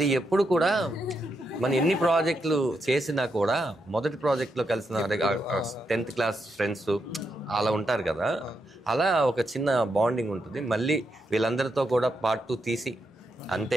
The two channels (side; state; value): both; normal; correlation 0.83